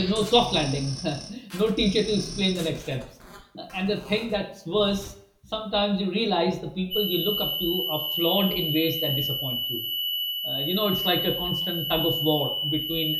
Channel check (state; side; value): identical; both; correlation 1.00